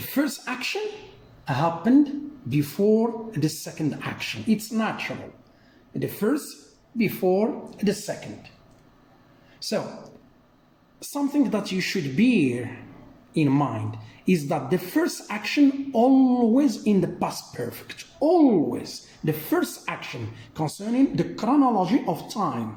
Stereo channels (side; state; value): both; identical; correlation 1.00